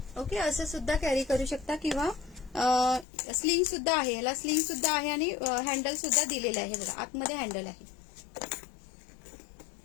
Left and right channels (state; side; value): drops out; right; at 3.1 s